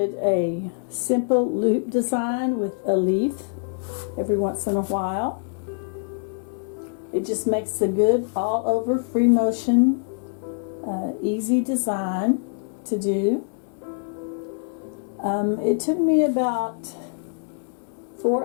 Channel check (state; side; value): silent; right; digital silence